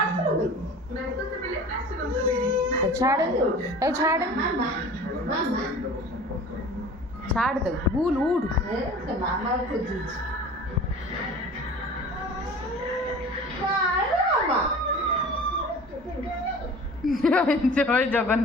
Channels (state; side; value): normal; both; correlation 0.41